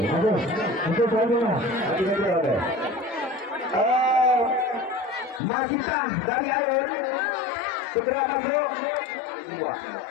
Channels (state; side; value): drops out; right; at 5.4 s